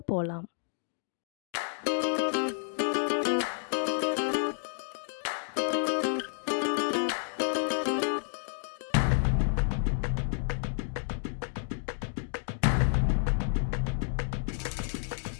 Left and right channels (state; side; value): silent; right; digital silence